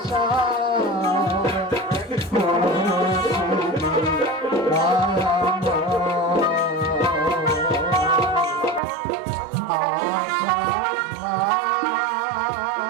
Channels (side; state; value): left; drops out; at 8.8 s